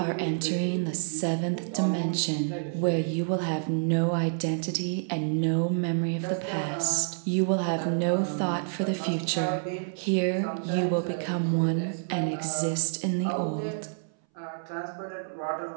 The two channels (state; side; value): silent; left; 59 dB below the other